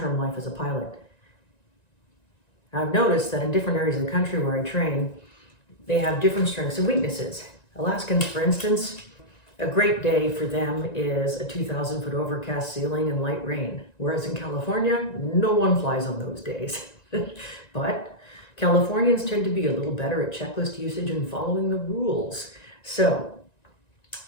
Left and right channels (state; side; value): late; right; 1.9 ms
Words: life as a pilot. Now, I've noticed that in different areas of the country where I train, they have different strengths and weaknesses. Alaskans, for instance, a great day for them is a 2,000-foot overcast ceiling and light rain, whereas in California, no one flies on those days. But Californians tend to be a little better at checklist usage and following the rules. So